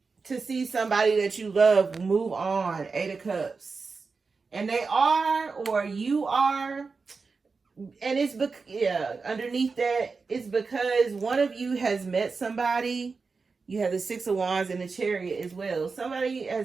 to see somebody that you love move on. 8 of Cups. And they are, or you are. And it's, underneath that, it's because one of you has met somebody. You have the 6 of Wands and the Chariot as well. Somebody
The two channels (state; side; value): quieter; left; 4.6 dB